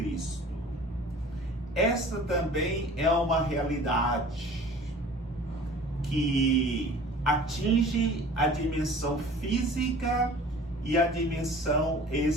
Esta também é uma realidade que atinge a dimensão física e a dimensão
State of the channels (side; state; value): both; normal; correlation 0.45